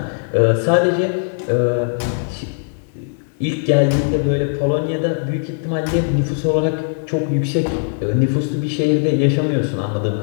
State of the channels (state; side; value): silent; right; 67 dB below the other